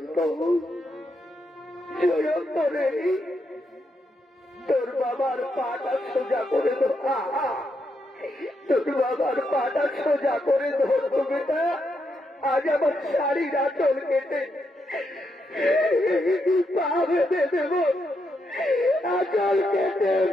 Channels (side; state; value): both; normal; correlation 0.81